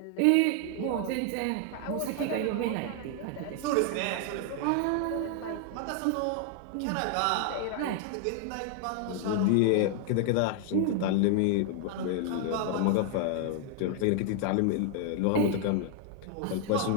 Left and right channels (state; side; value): different; both; correlation 0.00